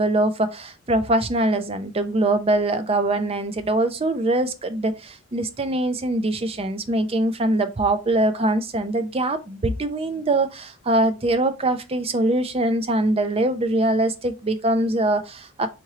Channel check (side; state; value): both; normal; correlation 0.48